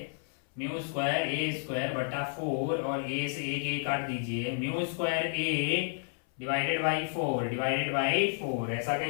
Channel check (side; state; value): right; silent; 57 dB below the other